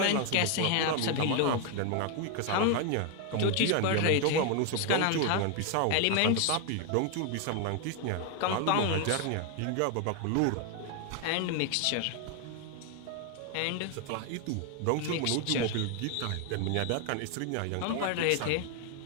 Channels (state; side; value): different; both; correlation 0.01